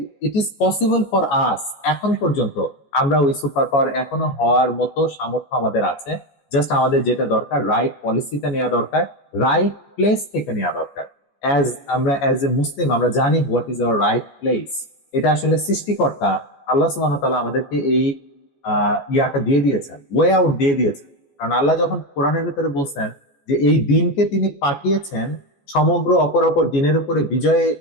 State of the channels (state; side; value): late; right; 14 ms